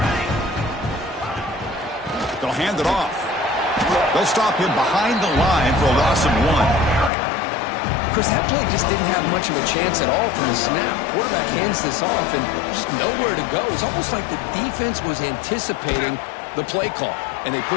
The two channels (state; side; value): drops out; right; at 7.1 s